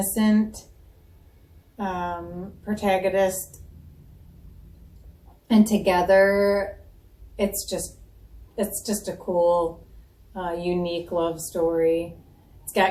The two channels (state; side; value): identical; both; correlation 1.00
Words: protagonist, and together it's just a cool unique love story. It's